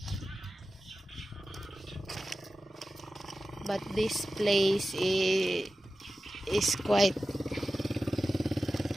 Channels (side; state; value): both; normal; correlation 0.94